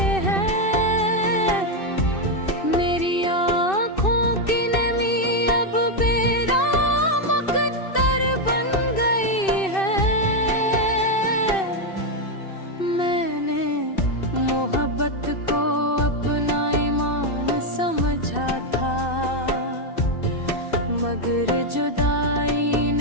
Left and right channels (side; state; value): right; late; 2.6 ms